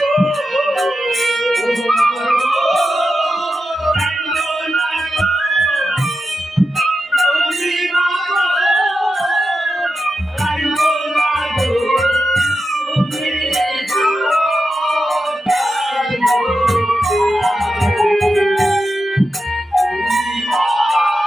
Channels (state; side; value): normal; both; correlation 0.90